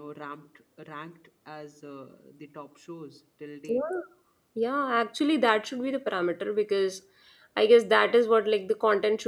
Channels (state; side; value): identical; both; correlation 1.00